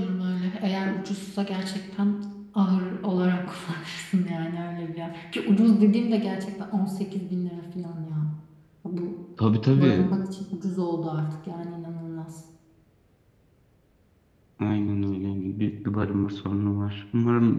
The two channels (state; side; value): identical; both; correlation 1.00